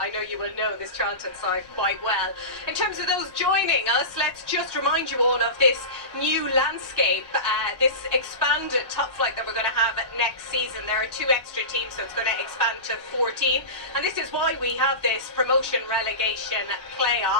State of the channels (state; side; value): late; left; 1.1 ms